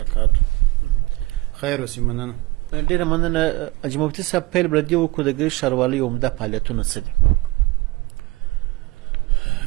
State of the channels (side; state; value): left; quieter; 21.7 dB